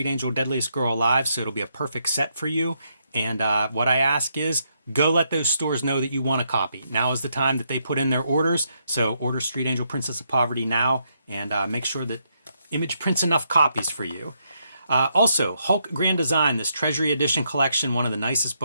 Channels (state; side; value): inverted; both; correlation -0.78